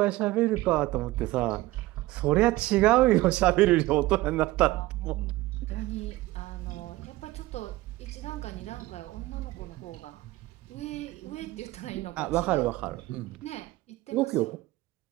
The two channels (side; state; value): left; quieter; 18.3 dB